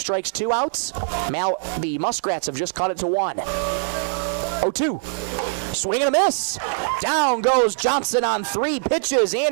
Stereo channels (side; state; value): left; silent; digital silence